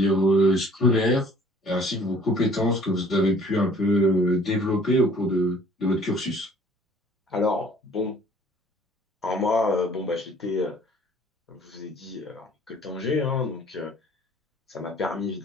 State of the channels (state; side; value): normal; both; correlation 0.53